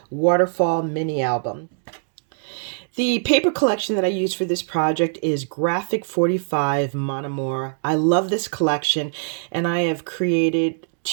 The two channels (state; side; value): silent; left; digital silence